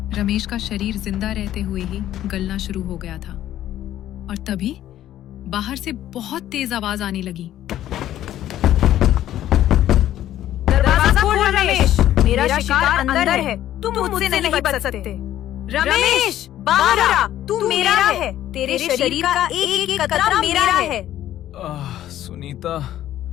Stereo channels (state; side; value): quieter; right; 12.5 dB